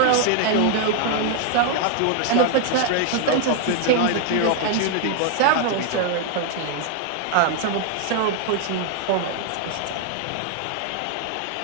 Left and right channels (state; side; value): different; both; correlation 0.00